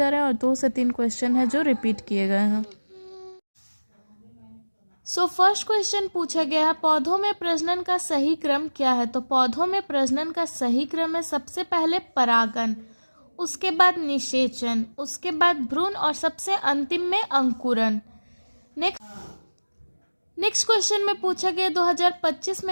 रहे हैं और 2 से 3 क्वेश्चन हैं जो रिपीट किए गए हैं। सो फर्स्ट क्वेश्चन पूछा गया है, पौधों में प्रजनन का सही क्रम क्या है। तो पौधों में प्रजनन का सही क्रम है सबसे पहले परागन, उसके बाद निषेचन, उसके बाद भ्रूण और सबसे अंतिम में अंकुरन। नेक्स्ट क्वेश्चन में पूछा गया 2025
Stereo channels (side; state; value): both; inverted; correlation -1.00